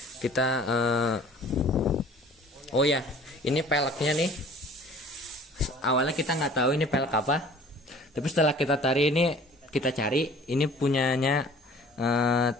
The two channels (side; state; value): both; normal; correlation 0.49